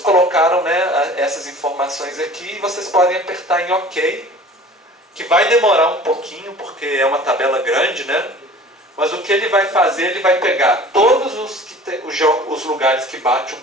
né, essas informações aqui e vocês podem apertar em OK, que vai demorar um pouquinho porque é uma tabela grande, né? Mas o que ele vai fazer, ele vai pegar todos os lugares que batem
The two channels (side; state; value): both; normal; correlation 0.44